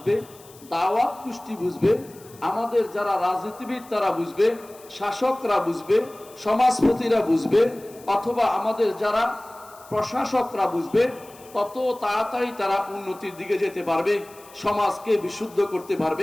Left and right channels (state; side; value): noise; left; hiss, 23 dB below the sound